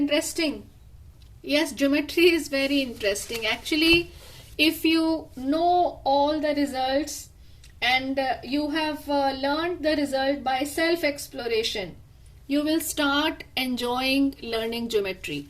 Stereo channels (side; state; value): both; identical; correlation 1.00